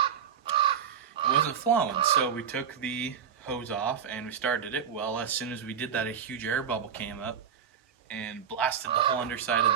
It wasn't flowing, so we took the hose off and we started it. Well, as soon as we did that, a huge air bubble came up and blasted the whole underside of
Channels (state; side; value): quieter; left; 7.8 dB